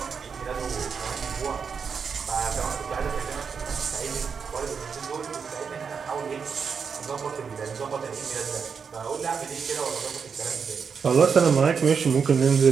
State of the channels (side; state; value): left; quieter; 6.1 dB